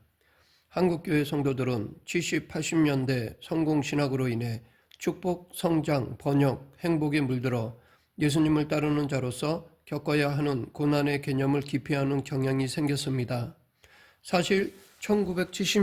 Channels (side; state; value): both; identical; correlation 1.00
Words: 한국교회 성도들은 70, 80년대 성공신학으로 인해 축복, 성장, 번역, 행복에 물들어 예수님을 따르는 자로서 겪어야 하는 고난의 개념을 기피하는 경향이 생겼습니다. 사실